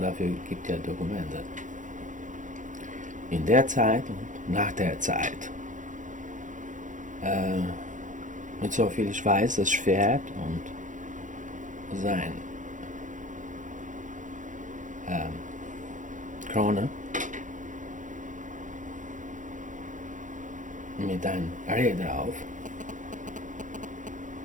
dafür gibt es ja Dokumente. In der Zeit und nach der Zeit. Mit so viel ich weiß, das Schwert und sein Krone mit einem Reh drauf,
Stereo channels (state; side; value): late; left; 0.37 ms